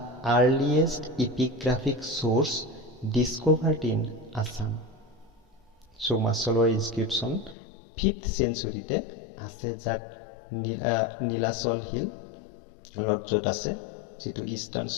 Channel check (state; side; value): drops out; right; at 7.6 s